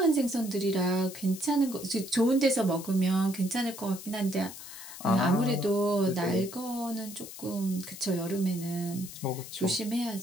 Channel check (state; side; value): noise; left; hiss, 13 dB below the sound